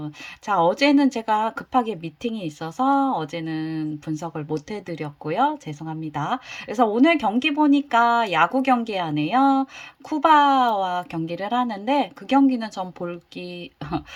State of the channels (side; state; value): both; identical; correlation 1.00